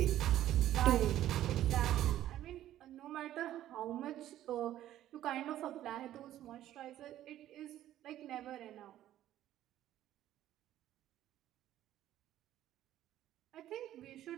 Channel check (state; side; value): quieter; left; 12.8 dB